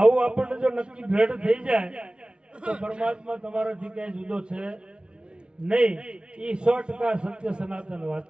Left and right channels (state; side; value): late; left; 0.057 ms